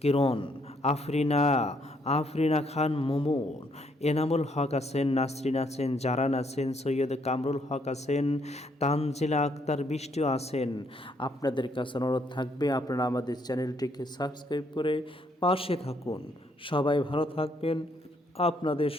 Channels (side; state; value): both; normal; correlation 0.71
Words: কিরণ, আফরিনা খান মুমুন, এনামুল হক আছেন, নাসরিন আছেন, জারান আছেন, সৈয়দ কামরুল হক আছেন, তানজিলা আক্তার বৃষ্টিও আছেন। আপনাদের কাছে অনুরোধ থাকবে আপনারা আমাদের চ্যানেলটিকে সাবস্ক্রাইব করে পাশে থাকুন। সবাই ভালো থাকবেন। আপনাদের